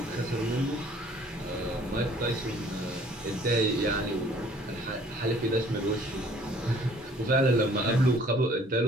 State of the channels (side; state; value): both; normal; correlation 0.55